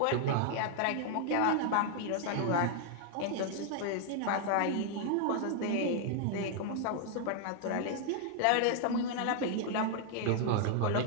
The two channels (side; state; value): both; different; correlation 0.00